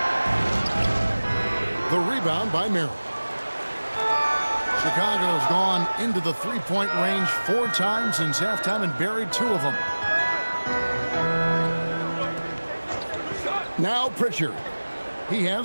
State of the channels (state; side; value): inverted; both; correlation -1.00